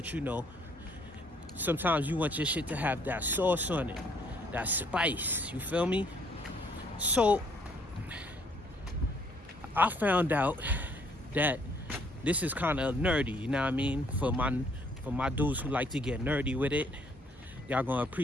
you know, sometimes you want your shit to have that sauce on it, that spice, you feel me? So I found out that this is kind of nerdy, you know what I mean? For my dudes who like to get nerdy with it, y'all gonna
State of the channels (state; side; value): normal; both; correlation 0.65